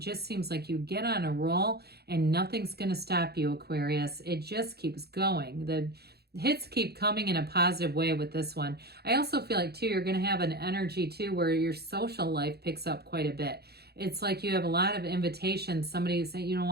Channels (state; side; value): late; left; 0.47 ms